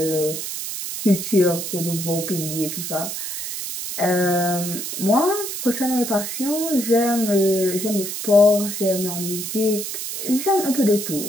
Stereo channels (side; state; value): right; noise; hiss, 5 dB below the sound